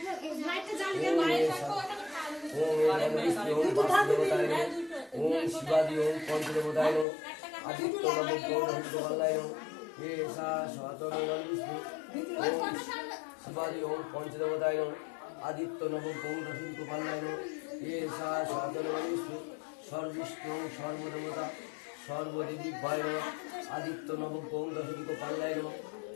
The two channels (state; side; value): drops out; right; at 7.1 s